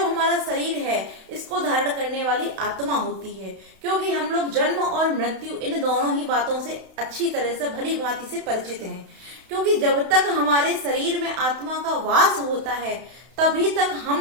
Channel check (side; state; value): left; late; 31 ms